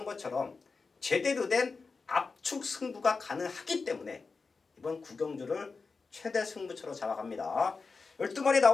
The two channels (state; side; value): quieter; right; 4.5 dB